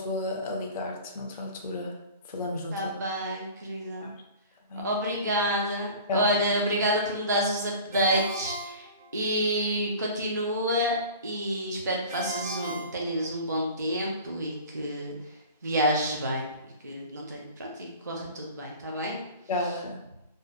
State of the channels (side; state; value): both; inverted; correlation -0.40